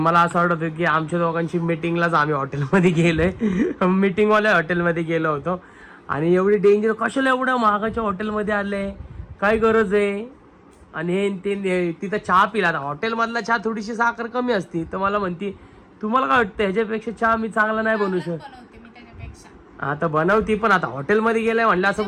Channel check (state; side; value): identical; both; correlation 1.00